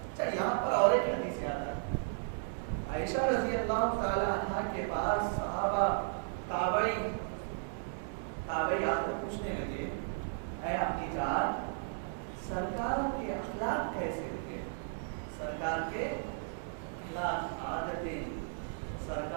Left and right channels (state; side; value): silent; left; 55 dB below the other